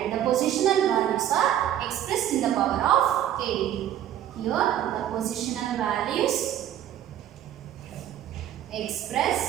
the positional values are expressed in the power of 8. Here the positional values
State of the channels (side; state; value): left; quieter; 11.3 dB